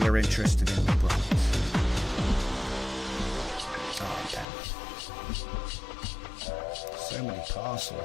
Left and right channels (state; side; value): drops out; right; at 4.5 s